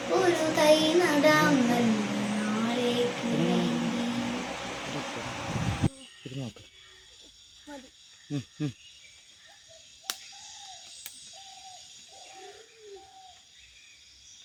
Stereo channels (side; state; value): both; identical; correlation 1.00